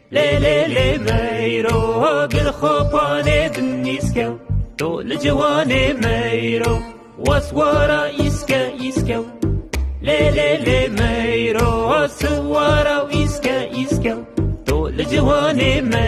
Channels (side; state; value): both; identical; correlation 1.00